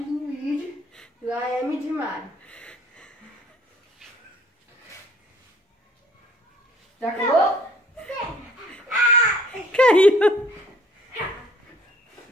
de Luigi, lá é M de Mario. Já acabou? Caiu.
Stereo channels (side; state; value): both; normal; correlation 0.57